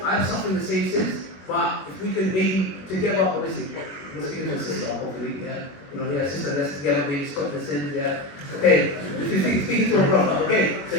I'm suffering the same sins, but if we can maybe together, obviously, you're speaking to a sister, hopefully, yeah. Sister, let's together maybe stop the sins, yeah. Okay, if you're speaking to a brother, okay, so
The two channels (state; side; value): late; right; 22 ms